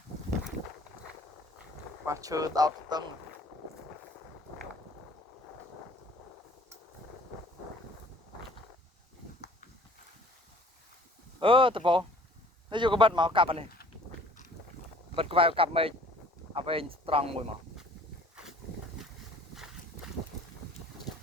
Và chơ tao tầng. Tập bộ. Nó vô cái bật máu cặp này. Bật vào cặp mình. À về strong mùi máu.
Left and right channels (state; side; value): normal; both; correlation 0.52